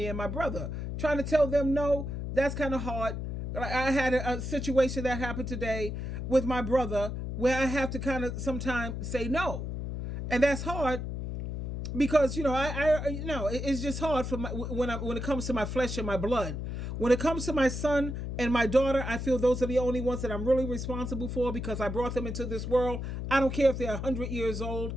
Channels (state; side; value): noise; left; hum, 4 dB below the sound